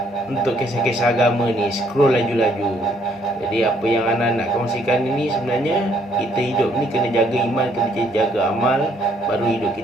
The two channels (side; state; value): both; normal; correlation 0.67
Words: untuk kisah-kisah agama ni, scroll laju-laju. Jadi apa yang Ana nak kongsikan ini sebenarnya, kita hidup ni kena jaga iman, kena jaga amal, baru hidup